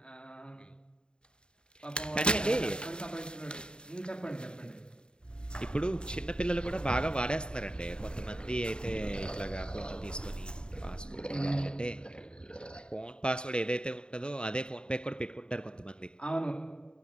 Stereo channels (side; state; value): right; late; 0.049 ms